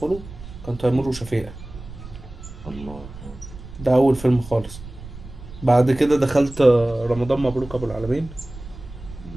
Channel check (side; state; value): right; noise; rumble, 15 dB below the sound